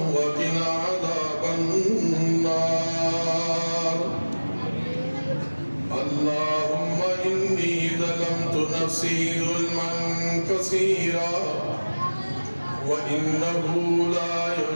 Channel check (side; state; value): both; inverted; correlation -1.00